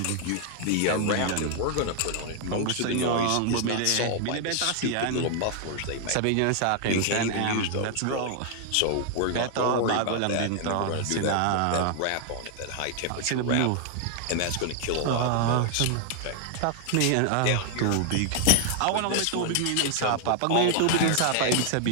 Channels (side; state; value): both; different; correlation 0.00